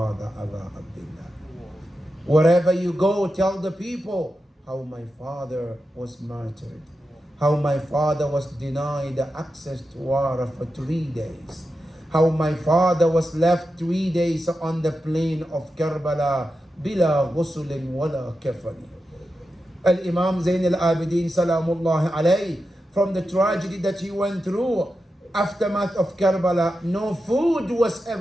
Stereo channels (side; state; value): both; normal; correlation 0.90